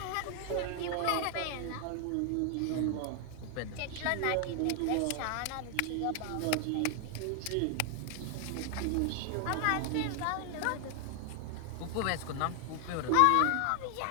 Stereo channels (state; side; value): different; both; correlation 0.00